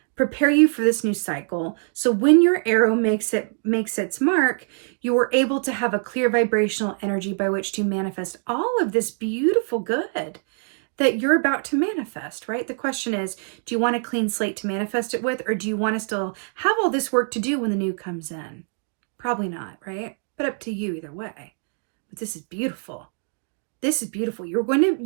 prepare you for this new cycle. So when your arrow makes its mark, you are able to have a clear vibrational energy by which to manifest all of this beautiful good that you're about to manifest, right? The question is, do you want a clean slate to manifest it with, or do you want to still have all this work to do when the new comes in? Probably not, right? But up to you either way. But this is beautiful. This is beautiful.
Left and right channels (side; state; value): left; silent; 56 dB below the other